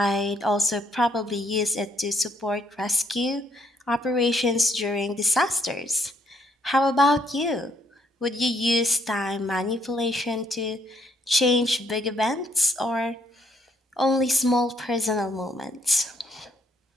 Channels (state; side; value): normal; both; correlation 0.71